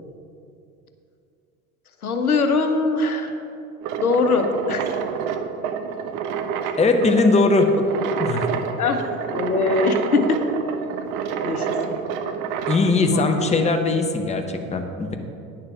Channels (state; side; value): normal; both; correlation 0.41